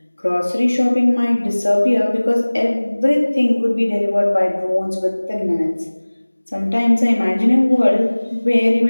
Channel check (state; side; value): inverted; both; correlation -1.00